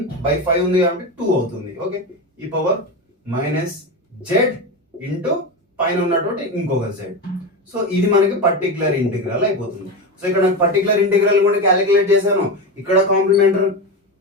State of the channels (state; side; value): normal; both; correlation 0.19